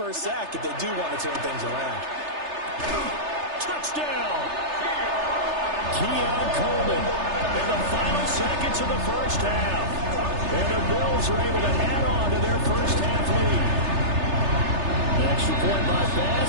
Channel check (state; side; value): late; left; 3.3 ms